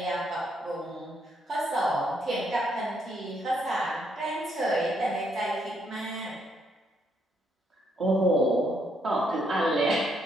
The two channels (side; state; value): both; normal; correlation 0.74